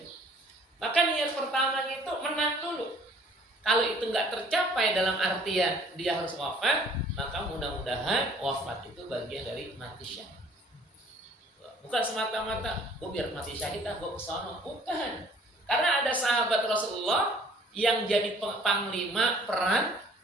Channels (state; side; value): normal; both; correlation 0.55